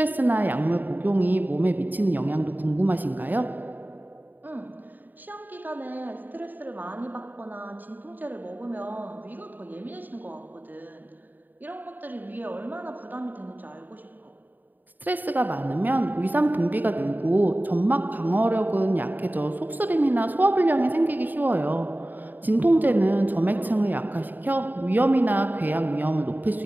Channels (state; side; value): late; left; 0.088 ms